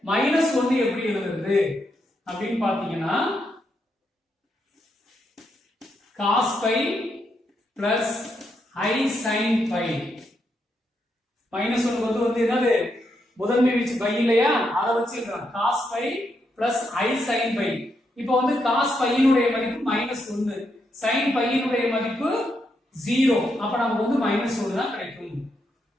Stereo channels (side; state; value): both; normal; correlation 0.80